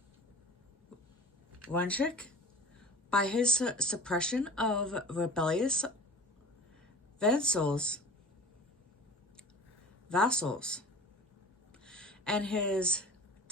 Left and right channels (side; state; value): both; normal; correlation 0.40